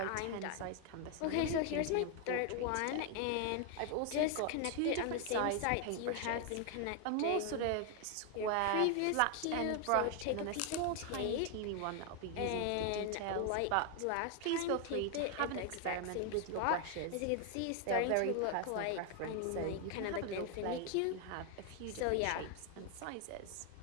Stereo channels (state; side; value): different; both; correlation 0.00